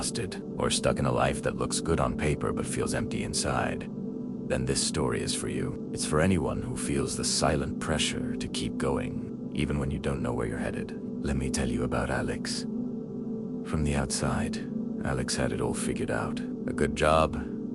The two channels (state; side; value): identical; both; correlation 1.00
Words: or stuck in a life that looks good on paper but feels empty inside, then this story is for you. It's for anyone who feels the silent pressure to keep going, even when you don't know where you're headed. Let me tell you about Alex. From the outside, Alex had it all figured out. A good job,